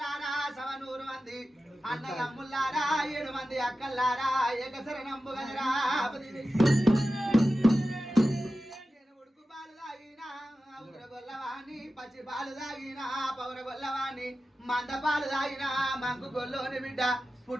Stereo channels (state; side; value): normal; both; correlation 0.93